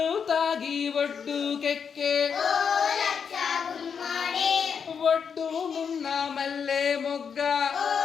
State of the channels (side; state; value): right; quieter; 6.7 dB